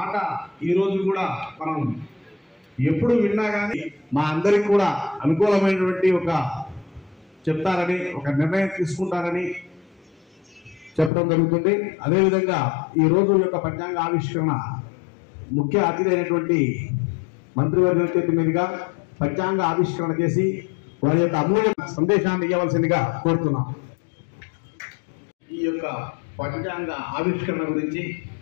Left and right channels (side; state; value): right; drops out; at 11.1 s